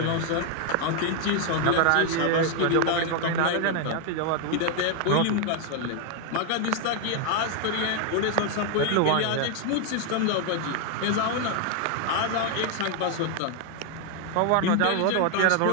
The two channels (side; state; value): both; different; correlation 0.00